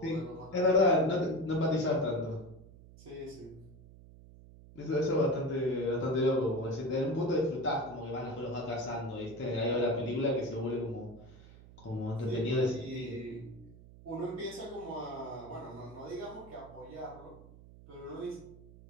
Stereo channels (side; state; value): right; noise; hum, 20 dB below the sound